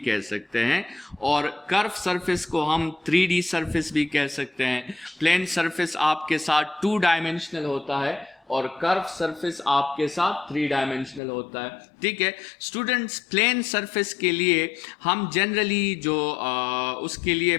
सकते हैं और कर्व सरफेस को हम 3D सरफेस भी कह सकते हैं। प्लेन सरफेस आपके साथ 2 डायमेंशनल होता है और कर्व सरफेस आपके साथ 3 डायमेंशनल होता है। ठीक है स्टूडेंट्स, प्लेन सरफेस के लिए हम जनरली जो उसके लिए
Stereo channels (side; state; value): right; drops out; at 11.2 s